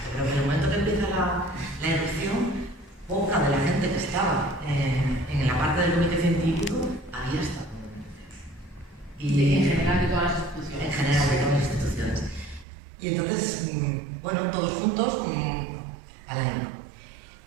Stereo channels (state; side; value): drops out; left; at 12.7 s